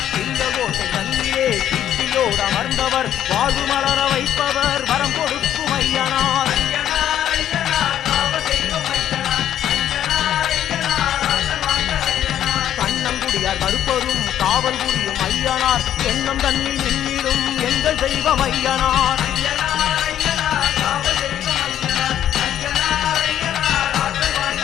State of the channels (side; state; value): right; quieter; 10.9 dB